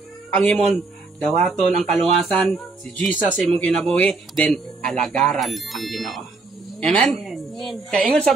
Ang imong dawaton ang kaluwasan, si Jesus imong kinabuhi, then alagaran ang Ginoo. Amen? Kaya ingon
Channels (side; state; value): left; quieter; 3.7 dB